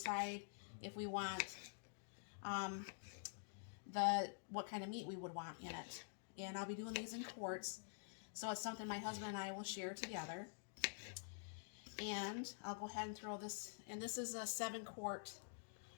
if we want what kind of meat we would want in it. And I'll be doing these in quarts, so it's something my husband and I will share together. And I'll go ahead and throw this, and this is a 7-quart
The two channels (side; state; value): right; silent; digital silence